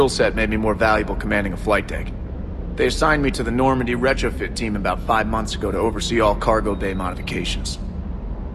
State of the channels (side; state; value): both; identical; correlation 1.00